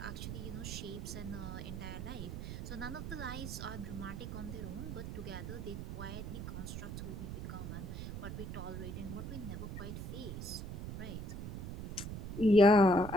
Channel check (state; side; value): noise; right; rumble, 6 dB below the sound